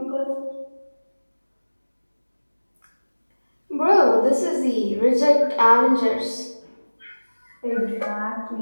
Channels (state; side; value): inverted; both; correlation -1.00